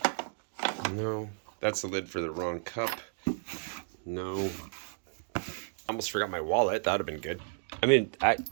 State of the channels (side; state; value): left; silent; 56 dB below the other